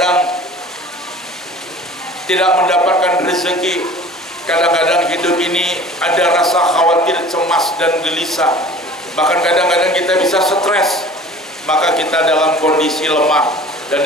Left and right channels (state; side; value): normal; both; correlation 0.44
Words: tidak mendapatkan rezeki. Kadang-kadang hidup ini ada rasa khawatir, cemas dan gelisah. Bahkan kadang-kadang kita bisa stres. Maka kita dalam kondisi lemah. Dan